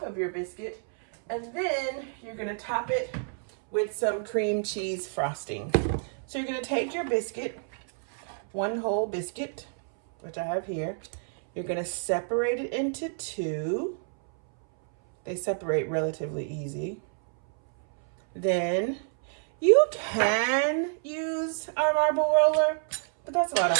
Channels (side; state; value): left; silent; 59 dB below the other